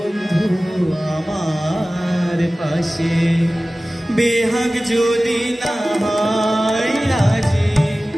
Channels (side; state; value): both; normal; correlation 0.97